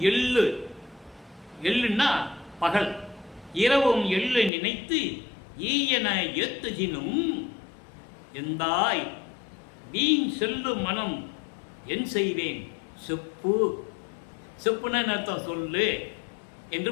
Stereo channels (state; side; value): drops out; right; at 4.5 s